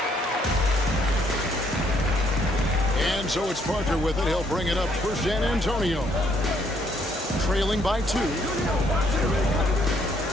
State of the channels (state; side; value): normal; both; correlation 0.68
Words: And so it's Parker with it. He'll bring it up for San Antonio. Trailing by 2. Got